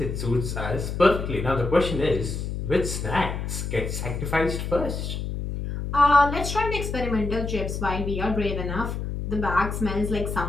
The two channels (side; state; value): left; noise; hum, 4 dB below the sound